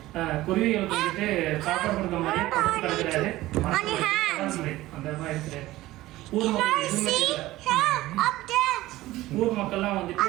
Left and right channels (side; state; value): left; quieter; 17.0 dB